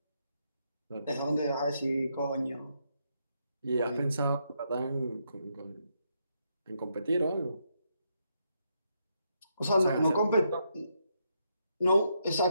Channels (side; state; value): both; inverted; correlation -0.79